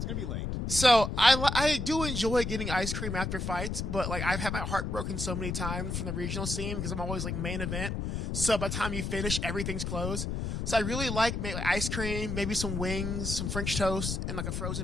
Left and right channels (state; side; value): noise; left; rumble, 2 dB below the sound